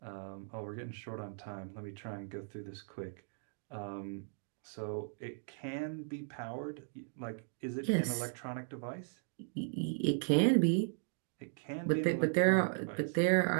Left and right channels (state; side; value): silent; left; digital silence